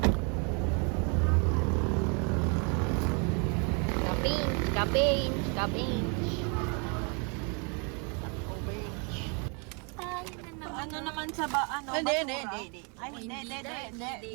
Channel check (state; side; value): quieter; left; 35.7 dB